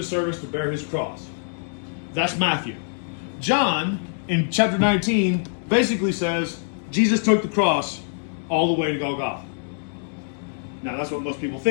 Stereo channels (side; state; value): right; silent; digital silence